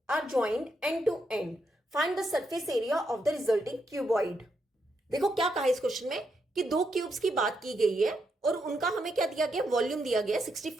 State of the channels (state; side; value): normal; both; correlation 0.81